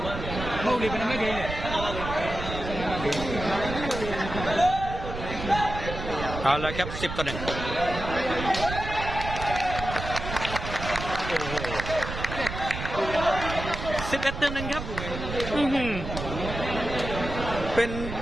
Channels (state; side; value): noise; right; rumble, 7 dB below the sound